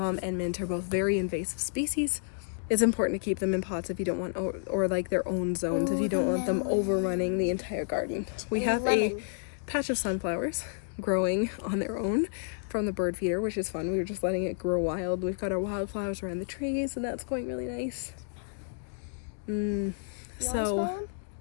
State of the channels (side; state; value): right; silent; digital silence